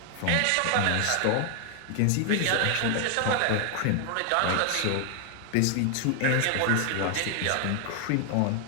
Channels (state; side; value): different; both; correlation 0.00